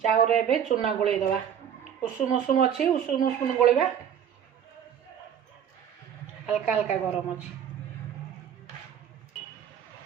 रे बे चूना गुले दवा। उषुम उषुम अच्छी उषुम उषुम गोलेबा। हल्का हल्का गरम अच्छी।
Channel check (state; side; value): quieter; left; 8.8 dB